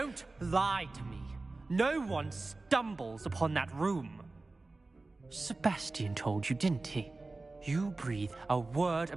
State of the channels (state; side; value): quieter; left; 3.3 dB